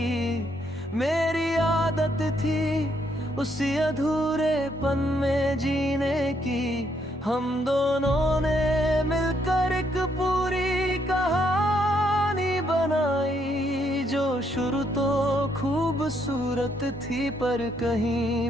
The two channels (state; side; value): normal; both; correlation 0.73